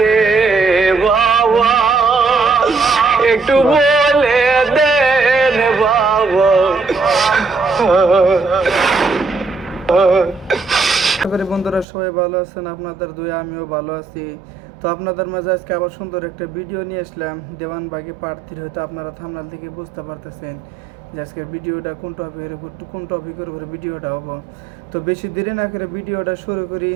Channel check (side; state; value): left; drops out; at 11.9 s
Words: বাবা, একটু বলে দেন বাবা। বন্ধুরা সবাই ভালো আছেন, আপনাদের দুই আমিও ভালো আছি। তো আপনাদের মাঝে আজকে আবার সুন্দর একটা ভিডিও নিয়ে আসলাম দেওয়ানবাগী পার্ট 3। হয়তো আপনারা থাম্বনেল থেকে বুঝতে পারতেছেন যে আজকের ভিডিওটা কোন টপিকের উপরে ভিডিওটা হবো। তো বেশি দেরি না করে ভিডিওটা শুরু করি,